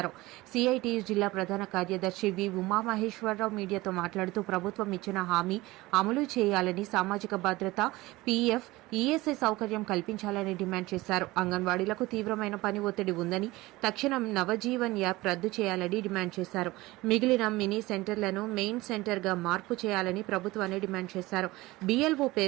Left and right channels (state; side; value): quieter; left; 19.7 dB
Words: సిఐటియు జిల్లా ప్రధాన కార్యదర్శి వి ఉమామహేశ్వరరావు మీడియాతో మాట్లాడుతూ ప్రభుత్వం ఇచ్చిన హామీ అమలు చేయాలని, సామాజిక భద్రత, పీఎఫ్, ఈఎస్ఐ సౌకర్యం కల్పించాలని డిమాండ్ చేశారు. అంగన్వాడీలకు తీవ్రమైన పని ఒత్తిడి ఉందని తక్షణం నవజీవన్ యాప్ రద్దు చేయాలని డిమాండ్ చేశారు. మిగిలిన మినీ సెంటర్లను మెయిన్ సెంటర్ గా మార్పు చేయాలని ప్రభుత్వాన్ని డిమాండ్ చేశారు. బిఎల్ఓ